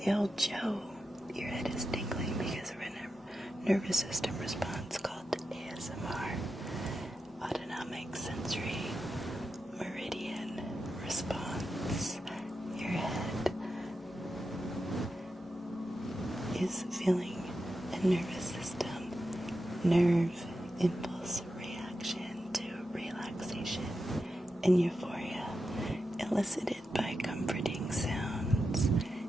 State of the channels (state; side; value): normal; both; correlation 0.89